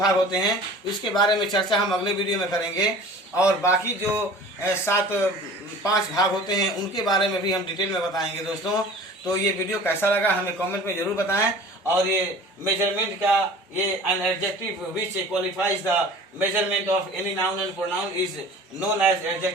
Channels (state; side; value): normal; both; correlation 0.43